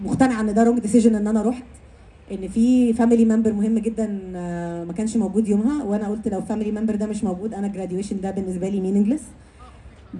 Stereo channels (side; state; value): both; identical; correlation 1.00